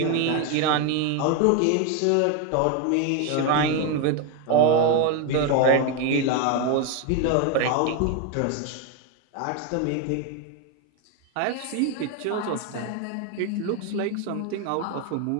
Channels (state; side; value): different; both; correlation 0.01